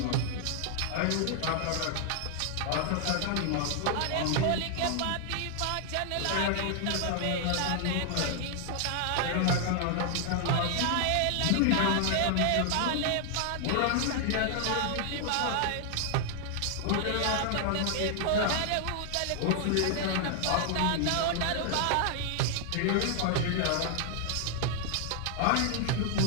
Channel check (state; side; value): different; both; correlation 0.00